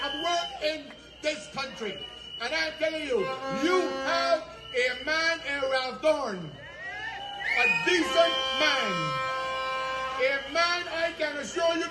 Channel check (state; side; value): identical; both; correlation 1.00